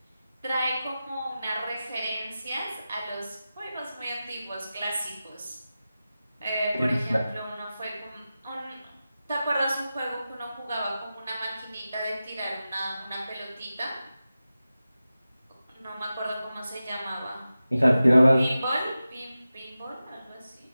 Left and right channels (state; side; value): inverted; both; correlation -0.94